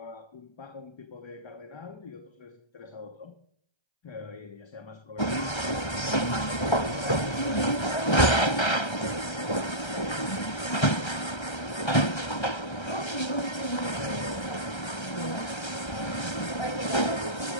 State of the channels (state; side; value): late; right; 1.3 ms